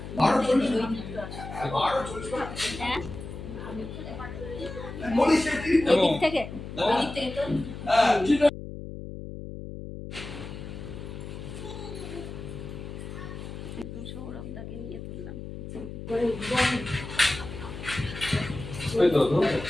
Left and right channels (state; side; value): noise; left; hum, 10 dB below the sound